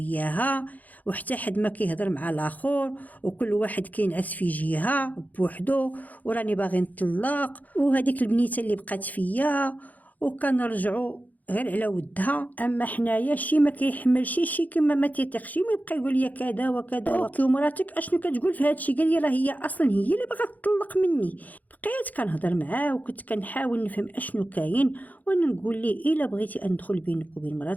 وحتى حد ما كيهضر مع الاخر، وكل واحد كينعس في جهه بوحدو، وراني باغي نطلق، وهذيك البنيته اللي بقات فيا وكنرجعوا غير على ودها. اما حنايا شي ما كيحملش شي كما ما تيثقش، ما يبقى يقول لي كذا وكذا اوكي ومراتك اشنو كتقول في هادشي؟ قال لي راه هي اصلا هي اللي بغات تطلق مني. بقيت كنهضر معاه وكنت كنحاول نفهم اشنو كاين، وانا نقول ليه الا بغيتي ندخل بينك وبين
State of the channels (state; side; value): late; right; 0.080 ms